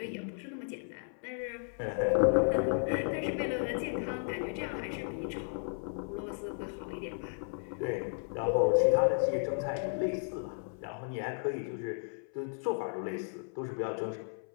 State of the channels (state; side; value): silent; right; 55 dB below the other